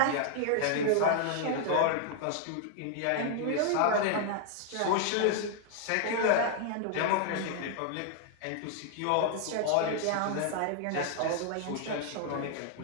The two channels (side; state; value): both; different; correlation 0.00